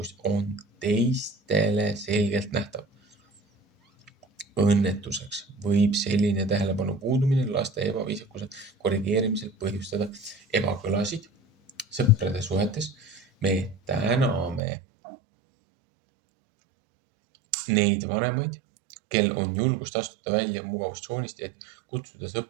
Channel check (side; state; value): left; drops out; at 14.6 s